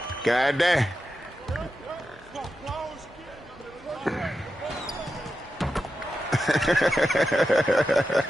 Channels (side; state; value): both; normal; correlation 0.90